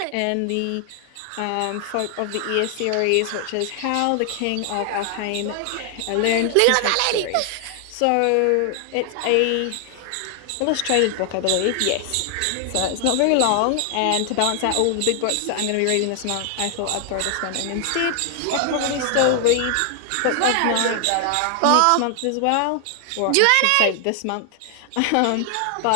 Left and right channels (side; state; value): both; different; correlation 0.00